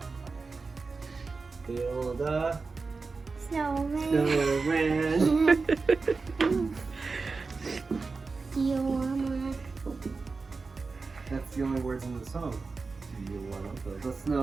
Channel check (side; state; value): left; quieter; 4.2 dB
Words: build a Snowman. snowman? Do you wanna? That's the only words in the song. Do you want to build a